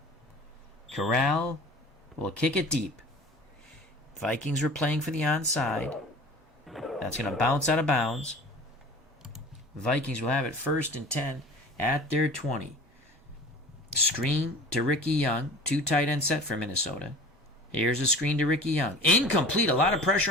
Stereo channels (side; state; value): both; normal; correlation 0.41